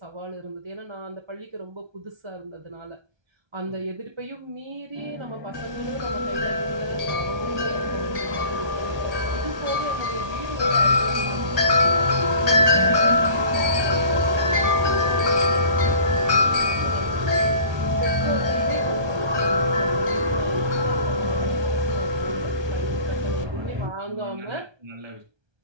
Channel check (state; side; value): late; left; 1.3 ms